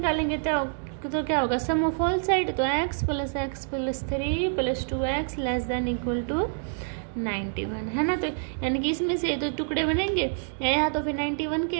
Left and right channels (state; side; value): silent; left; digital silence